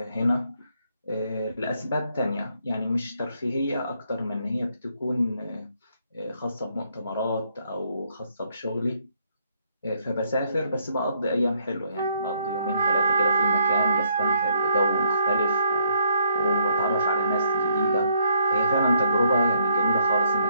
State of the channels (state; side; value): inverted; both; correlation -0.71